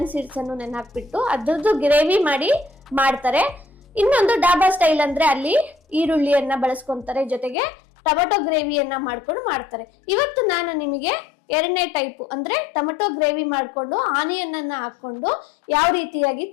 ಸೀಡ್ಸ್ ಅನ್ನು ನೆನಾಕ್ಬಿಟ್ಟು ಅದ್ರದ್ದು ಗ್ರೇವಿ ಮಾಡಿ ಮಾಡ್ತಾರೆ. ಇನ್ನೊಂದು ಡಾಬಾ ಸ್ಟೈಲ್ ಅಂದ್ರೆ ಅಲ್ಲಿ ಈರುಳ್ಳಿಯನ್ನ ಬಳಸ್ಕೊಂತಾರೆ, ಜೊತೆಗೆ ಟೊಮೆಟೊ ಗ್ರೇವಿಯನ್ನ ಮಾಡ್ಕೊಂಡು ಮಾಡ್ತಾರೆ. ಇವತ್ತು ನಾನು ನಿಮಗೆ ಎರಡನೇ ಟೈಪ್ ಅಂದ್ರೆ ಟೊಮೆಟೊ ಗ್ರೇವಿ ಮಾಡ್ಕೊಂಡು ಆನಿಯನ್ ಅನ್ನ ಹಾಕೊಂಡು ಯಾವ ರೀತಿಯಾಗಿ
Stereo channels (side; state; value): right; drops out; at 7.6 s